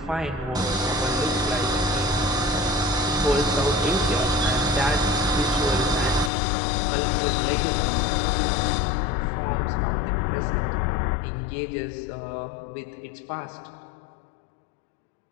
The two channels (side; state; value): right; drops out; at 6.3 s